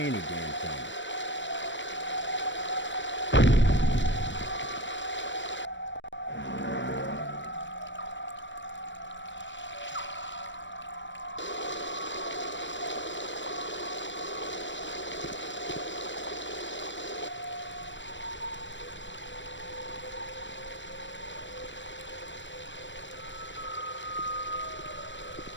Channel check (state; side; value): late; right; 0.54 ms